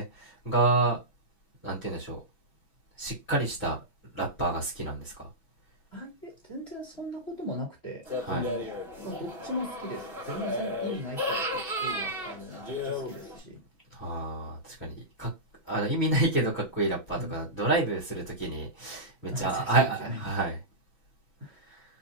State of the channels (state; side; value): late; right; 6.0 ms